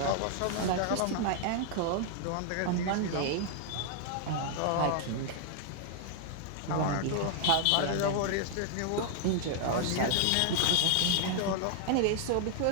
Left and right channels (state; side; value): different; both; correlation 0.00